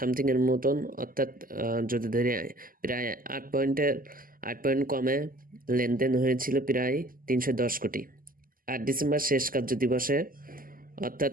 মতন, অর্থাৎ যদি ধরে প্রায় ৮ পয়েন্ট কমে লেনদেন হয়েছিল প্রায় ৩১০ কোটি। ৮ ডিসেম্বর শেষ কার্যদিবসে অর্থাৎ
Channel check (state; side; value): late; left; 0.41 ms